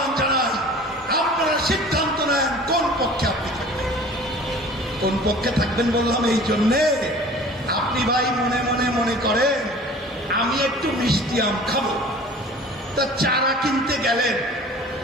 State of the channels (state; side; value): normal; both; correlation 0.44